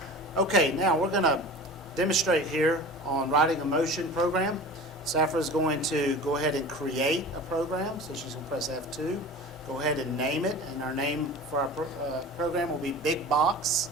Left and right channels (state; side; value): normal; both; correlation 0.37